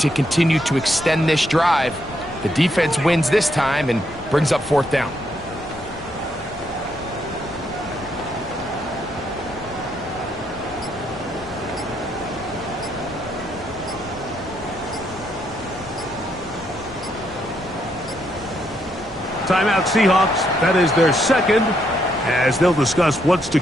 continue to extend this drive. The defense wins this time and brings up 4th down. Timeout Seahawks. That is their 2nd, as they'll discuss what's to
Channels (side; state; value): left; noise; rumble, 19 dB below the sound